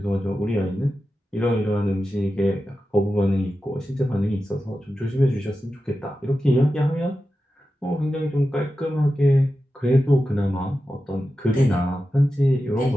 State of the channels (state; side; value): normal; both; correlation 0.92